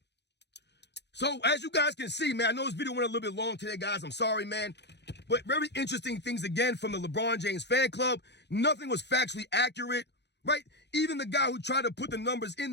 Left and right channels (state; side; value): late; right; 0.50 ms